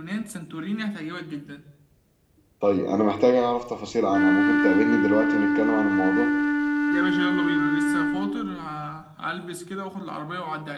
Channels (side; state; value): both; identical; correlation 1.00